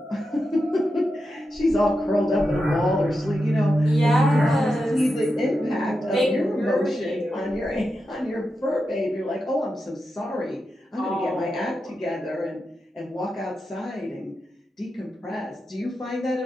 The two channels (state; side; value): normal; both; correlation 0.89